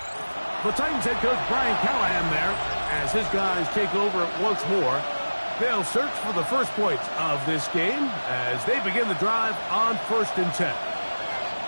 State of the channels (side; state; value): both; inverted; correlation -1.00